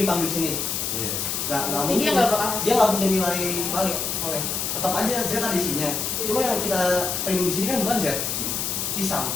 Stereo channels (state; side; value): noise; left; hiss, 1 dB below the sound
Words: dipanggil di sini. Iya. Nggak Jadi muncul. dia nggak bakal hasil. Dia nggak punya nilai balik. Soalnya tetap aja Z ada isinya. Cuma yang kita print di sini kan bukan Z, si sum.